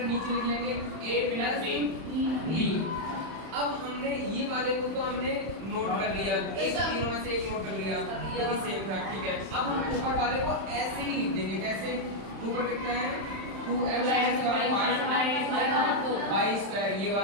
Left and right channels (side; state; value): left; late; 31 ms